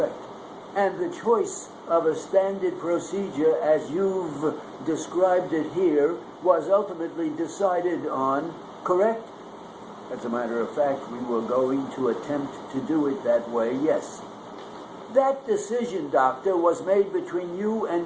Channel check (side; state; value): both; identical; correlation 1.00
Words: And the choice of a standard procedure, as you've described it here, was ultimately decided on, correct? As a matter of fact, we were going to attempt to do it that way, yes. That decision, doctor, was made between you